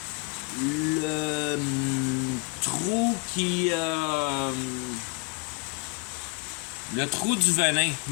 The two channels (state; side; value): quieter; right; 30.5 dB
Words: le trou qui... le trou du venin,